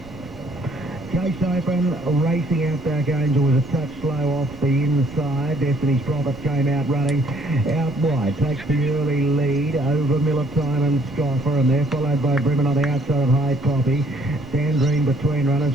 Chase Open, racing Outback Angel was a touch slow off the inside. Destiny's Prophet came out running out wide. Takes the early lead over Miller Time and Scoffer, and they're followed by Bremen on the outside of High Poppy. Sandrine between runners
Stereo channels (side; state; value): right; noise; rumble, 18 dB below the sound